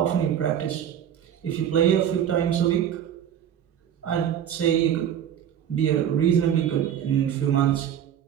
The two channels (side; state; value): left; quieter; 9.6 dB